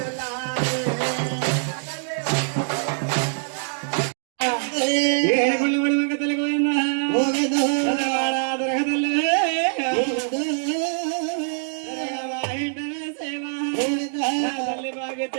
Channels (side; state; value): left; silent; 63 dB below the other